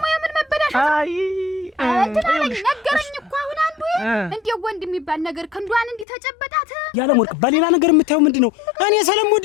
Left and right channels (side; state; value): right; drops out; at 6.1 s